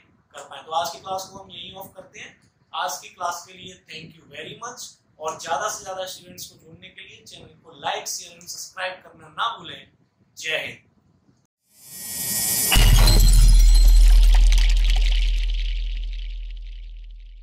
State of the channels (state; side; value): identical; both; correlation 1.00